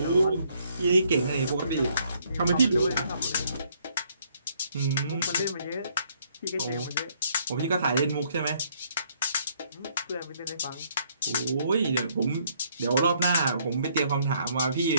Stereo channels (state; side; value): inverted; both; correlation -0.67